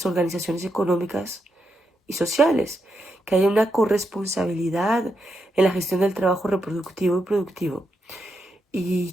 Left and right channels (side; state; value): both; normal; correlation 0.83